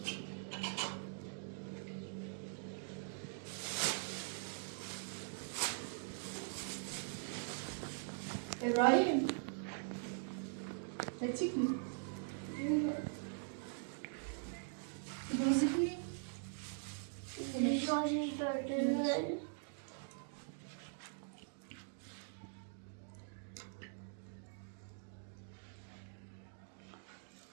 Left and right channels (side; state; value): left; silent; digital silence